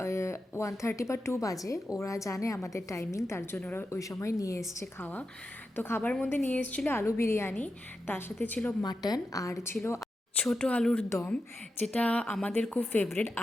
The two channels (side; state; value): both; normal; correlation 0.89